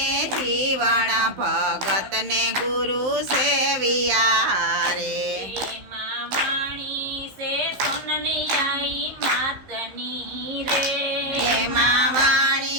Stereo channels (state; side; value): late; left; 15 ms